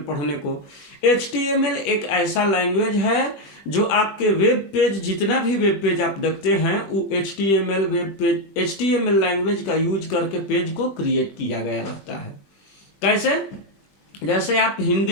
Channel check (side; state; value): right; late; 21 ms